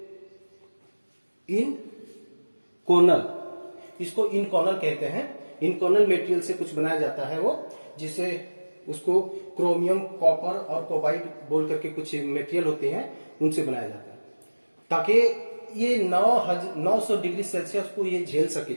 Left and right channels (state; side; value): inverted; both; correlation -1.00